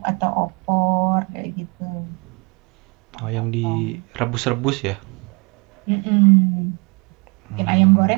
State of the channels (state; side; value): quieter; left; 30.3 dB